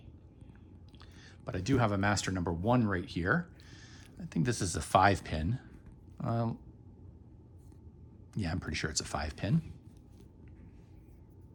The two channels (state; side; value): identical; both; correlation 1.00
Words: but I do have a master number 1 right here. I think this is a 5 pin. Yeah, I'm pretty sure it's a 5 pin.